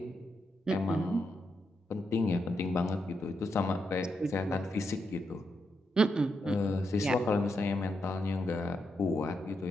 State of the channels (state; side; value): normal; both; correlation 0.83